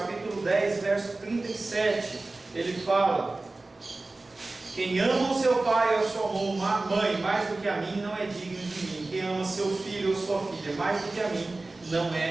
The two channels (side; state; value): left; quieter; 3.2 dB